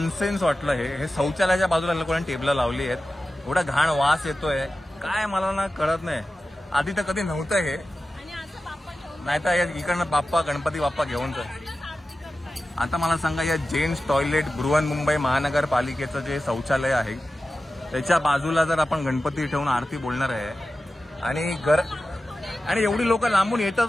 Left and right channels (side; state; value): both; normal; correlation 0.94